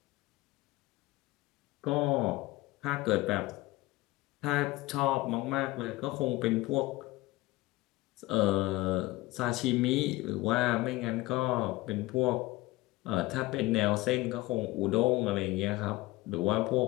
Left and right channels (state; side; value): quieter; right; 19.7 dB